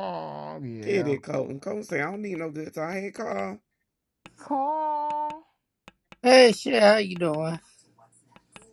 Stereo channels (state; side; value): identical; both; correlation 1.00